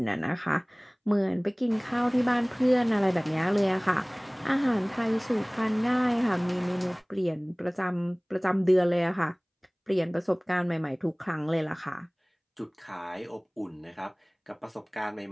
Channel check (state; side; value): identical; both; correlation 1.00